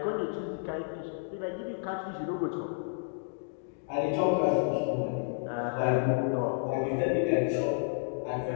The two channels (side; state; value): right; silent; digital silence